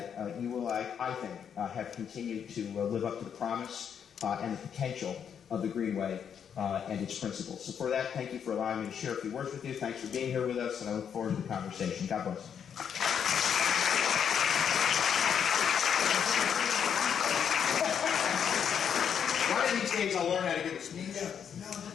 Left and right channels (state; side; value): quieter; right; 7.9 dB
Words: you will, I think, have continued to live up to the promise and the potential of the Greenway and its principles. So for that, thank you for allowing me to share a few words with you. Thanks for being here with us, and I look forward to the conversation. God bless. One of these days I'll learn how to get this. Yeah,